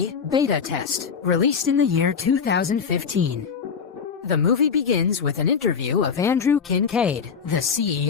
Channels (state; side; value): quieter; right; 6.3 dB